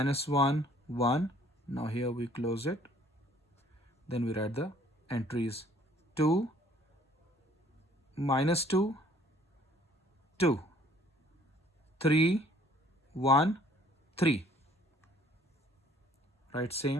1, 1. Now here we close it. Then we write the entries. 2, minus 2, 2, 3, 1, 3. Right,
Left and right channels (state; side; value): normal; both; correlation 0.58